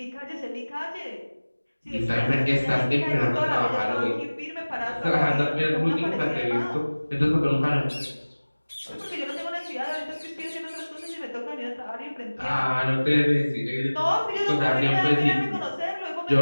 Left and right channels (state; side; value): inverted; both; correlation -1.00